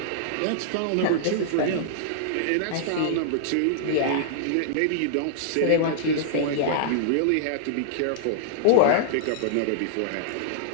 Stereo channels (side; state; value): both; different; correlation -0.01